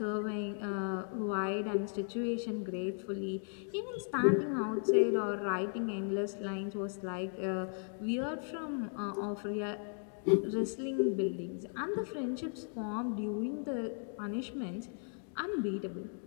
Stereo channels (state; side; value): silent; right; 54 dB below the other